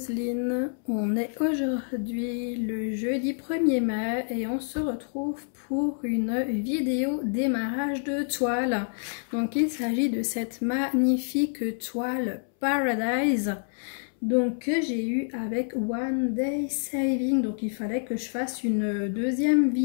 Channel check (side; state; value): right; silent; 60 dB below the other